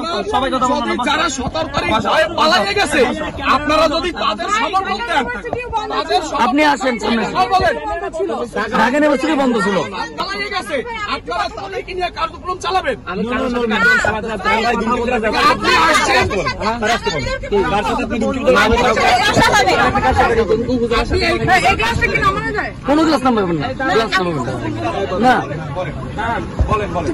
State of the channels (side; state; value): both; identical; correlation 1.00